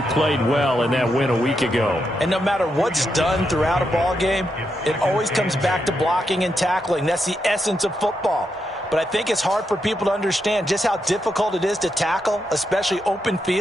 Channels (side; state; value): both; normal; correlation 0.83